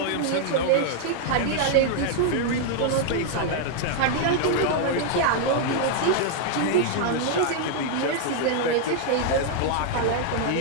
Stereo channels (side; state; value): both; different; correlation 0.00